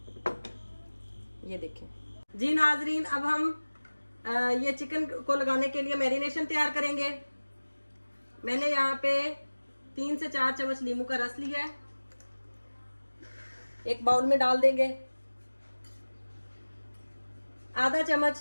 ये देखें जी नाजरीन, अब हम ये चिकन को लगाने के लिए मैरिनेशन तैयार करेंगे। मैंने यहाँ पे 3 से 4 चम्मच नींबू का रस लिया है, एक बाउल में डाल देंगे। आधा चम्मच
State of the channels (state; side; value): inverted; both; correlation -1.00